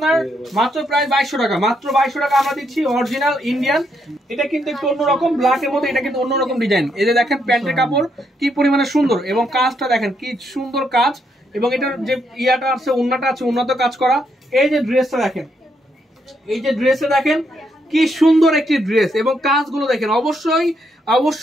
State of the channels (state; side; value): normal; both; correlation 0.77